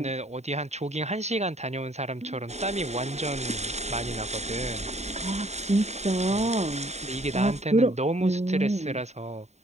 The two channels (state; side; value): late; left; 0.32 ms